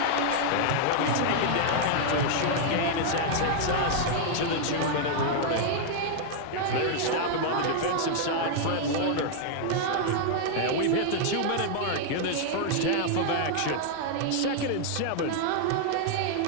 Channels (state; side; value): different; both; correlation -0.01